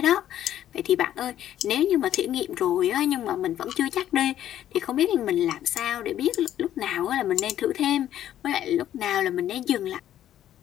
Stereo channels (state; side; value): quieter; right; 11.6 dB